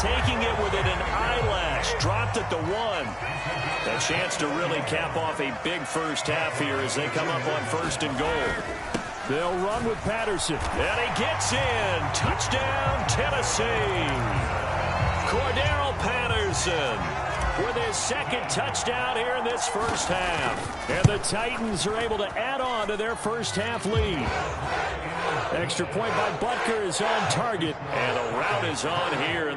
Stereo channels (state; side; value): identical; both; correlation 1.00